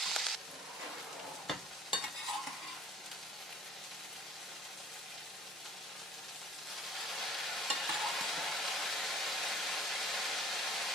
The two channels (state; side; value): normal; both; correlation 0.51